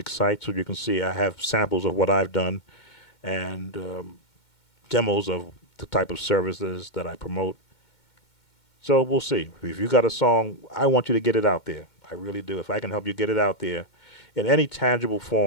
site, so you can see I have samples of what I've done and demos of the type of services that I promote. So we'll see. If you got a song, I want you to get it out there. I really do. If I can help you get it out there in any tangible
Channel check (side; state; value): right; late; 2.2 ms